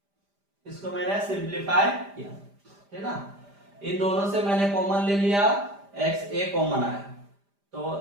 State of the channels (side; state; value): left; late; 5.0 ms